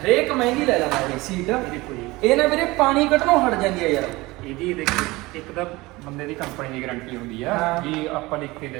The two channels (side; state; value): left; quieter; 21.3 dB